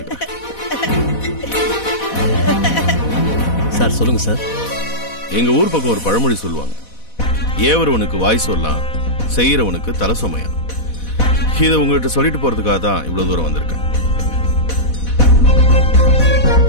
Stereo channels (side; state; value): right; late; 4.1 ms